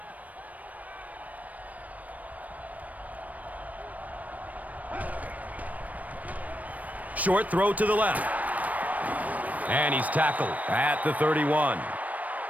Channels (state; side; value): late; left; 0.072 ms